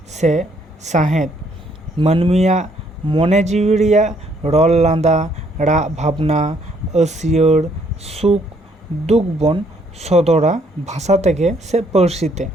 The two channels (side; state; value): both; normal; correlation 0.67